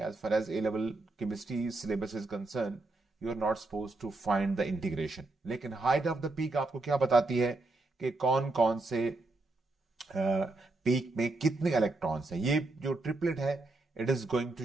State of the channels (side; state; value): left; quieter; 3.1 dB